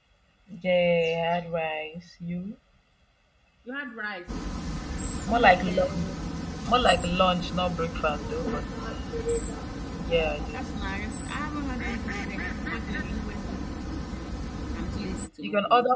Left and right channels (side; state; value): both; identical; correlation 1.00